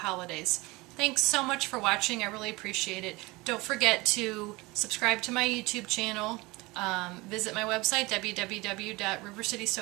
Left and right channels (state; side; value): quieter; left; 22.9 dB